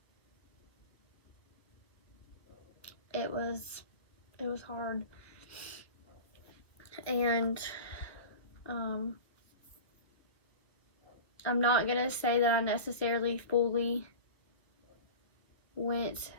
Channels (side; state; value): right; late; 1.2 ms